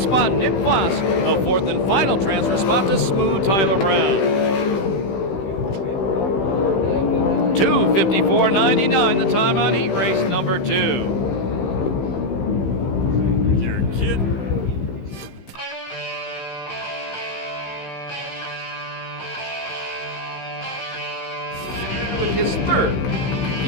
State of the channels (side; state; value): right; late; 15 ms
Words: spot Nick Foss. The 4th and final transfer spot to Smooth Tyler Brown. 2:54.99 the time on heat race number 2. You're kidding. With his 3rd